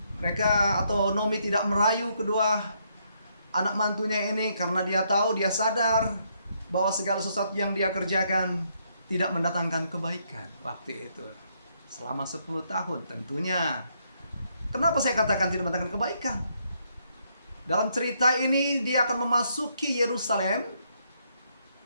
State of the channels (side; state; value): both; inverted; correlation -0.74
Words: Mereka atau Nomi tidak merayu kedua anak mantunya ini karena dia tahu, dia sadar bahwa segala sesuatu yang dia kerjakan tidak mendatangkan kebaikan waktu itu. Selama 10 tahun tentunya. Kenapa saya katakan tidak mendatangkan kebaikan? Dalam cerita ini dia akan memasuki Yerusalem,